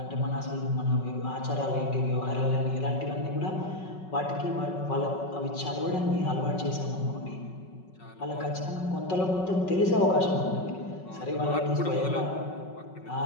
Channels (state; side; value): late; right; 5.4 ms